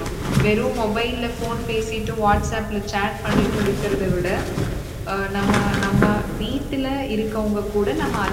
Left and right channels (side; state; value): both; identical; correlation 1.00